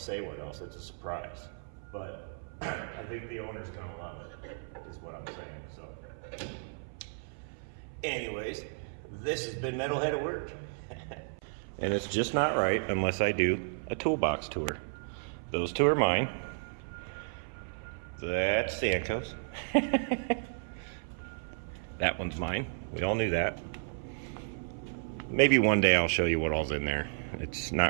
say what else, it's a surprise, but I think the owner's going to love it, is what I'm saying. So anyways, this has been Metalhead at Work. And it's just not right unless I do a toolbox tour. Those two are mine. That's Stanko's. That one's mine. We all knew that. Maybe one day I'll show you what all's in there. It's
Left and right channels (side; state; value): left; silent; 56 dB below the other